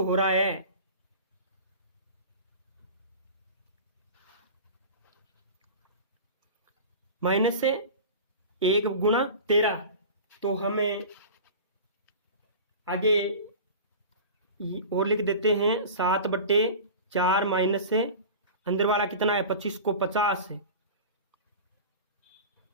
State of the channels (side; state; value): both; inverted; correlation -0.35